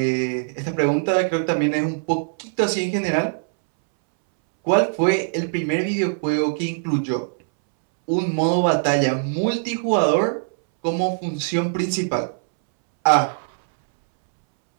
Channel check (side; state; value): left; silent; 64 dB below the other